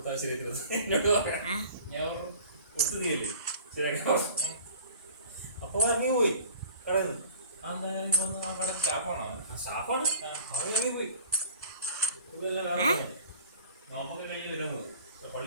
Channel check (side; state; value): both; inverted; correlation -0.47